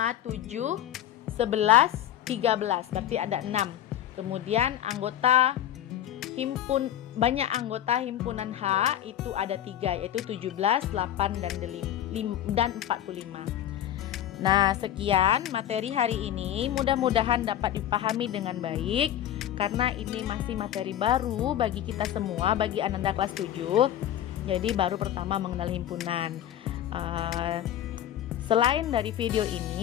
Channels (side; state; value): right; quieter; 11.5 dB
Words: 7, 11, 13. Berarti ada 6. Kemudian banyak anggota himpunan H itu ada 3, yaitu 17, 8 dan 45. Nah, sekian materi hari ini. Mudah-mudahan dapat dipahami dengan baik karena ini masih materi baru bagi kita semua, bagi Ananda kelas 7. Jadi baru pertama mengenal himpunan. Selain dari video